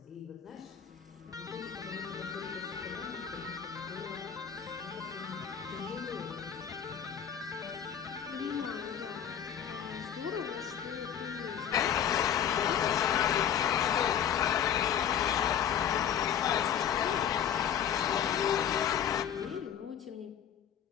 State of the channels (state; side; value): quieter; right; 8.9 dB